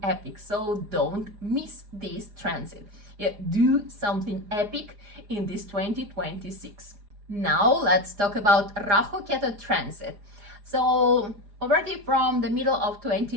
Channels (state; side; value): late; left; 4.9 ms